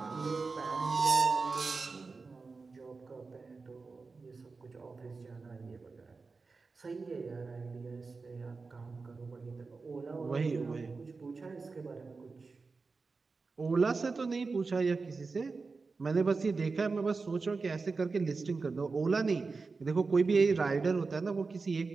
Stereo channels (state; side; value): quieter; left; 4.3 dB